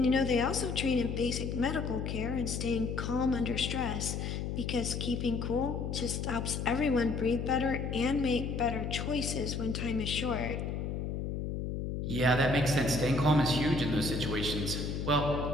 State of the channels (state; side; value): noise; left; hum, 3 dB below the sound